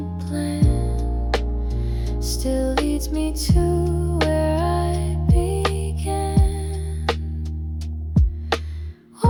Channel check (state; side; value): identical; both; correlation 1.00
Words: plan still leads me to where I began.